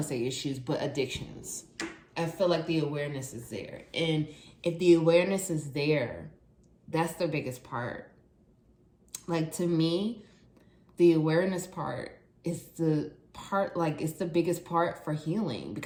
to say issues, but addictions. I feel like the awareness is there. And if the awareness is there, that's the biggest part. Like, to me, the awareness part is the part, it's the biggest part for healing.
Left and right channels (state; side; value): identical; both; correlation 1.00